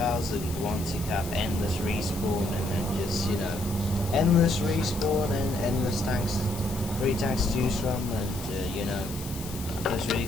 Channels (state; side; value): noise; left; hiss, 12 dB below the sound